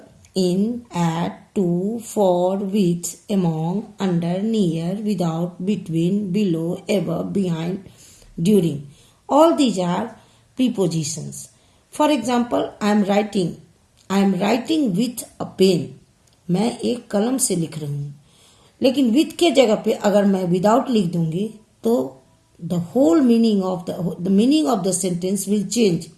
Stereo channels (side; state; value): both; identical; correlation 1.00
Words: in, at, to, for, with, among, under, near, without, between, below, above, behind, during. All these are prepositions. For example, I am writing with a pen. मैं एक कलम से लिख रही हूँ. लेकिन with के जगह पे अगर मैं without लिख दूंगी तो the whole meaning of the sentence will change.